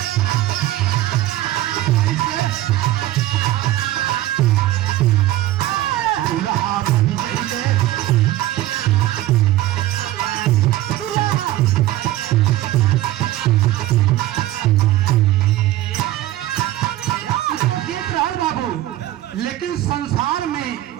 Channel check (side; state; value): left; quieter; 15.0 dB